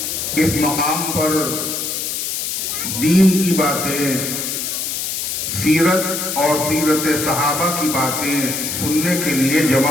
اس مقام پر دین کی باتیں، سیرت اور سیرت صحابہ کی باتیں سننے کے لیے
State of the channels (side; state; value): left; noise; hiss, 3 dB below the sound